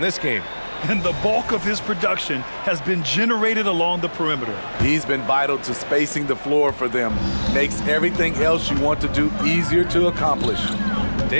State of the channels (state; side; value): inverted; both; correlation -1.00